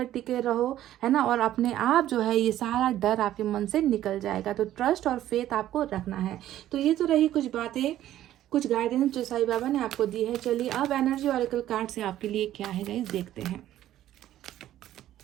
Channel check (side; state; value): left; quieter; 12.9 dB